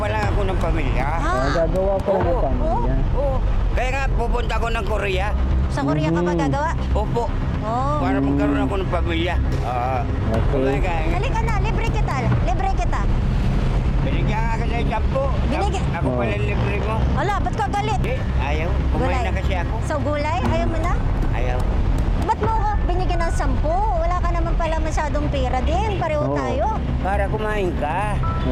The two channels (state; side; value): identical; both; correlation 1.00